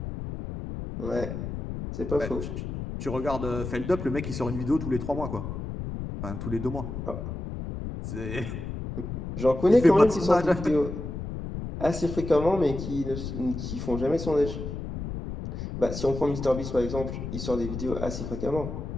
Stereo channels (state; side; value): noise; left; rumble, 6 dB below the sound